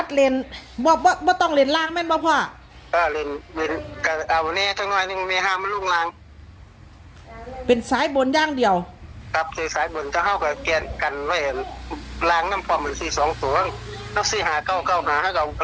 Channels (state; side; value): identical; both; correlation 1.00